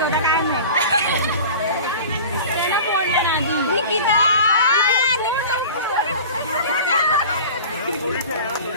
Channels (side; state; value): both; inverted; correlation -0.38